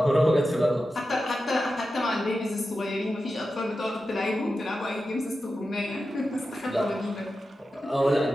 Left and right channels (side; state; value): both; normal; correlation 0.91